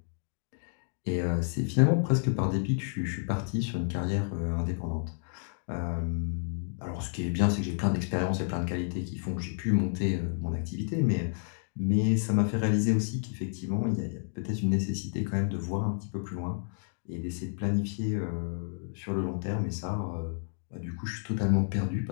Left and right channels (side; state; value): right; silent; digital silence